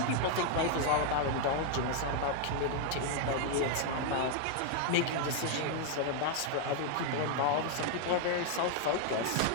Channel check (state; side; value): different; both; correlation 0.00